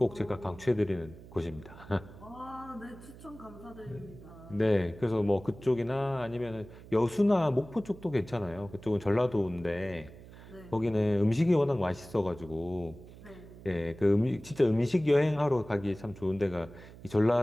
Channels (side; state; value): right; noise; hum, 18 dB below the sound